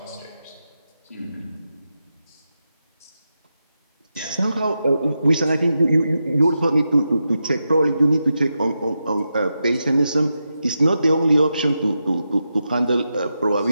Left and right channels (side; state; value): both; inverted; correlation -0.88